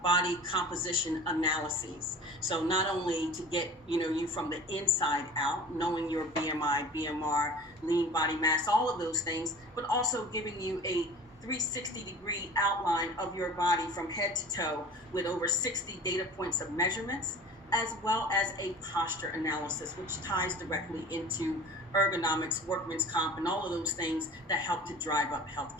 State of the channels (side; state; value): both; normal; correlation 0.41